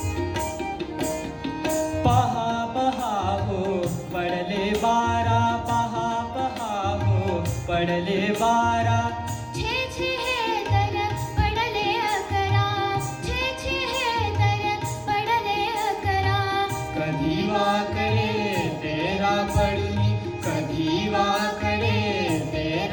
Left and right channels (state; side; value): identical; both; correlation 1.00